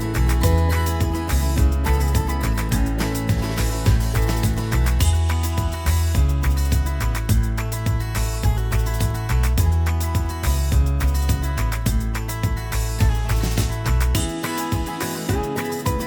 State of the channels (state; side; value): identical; both; correlation 1.00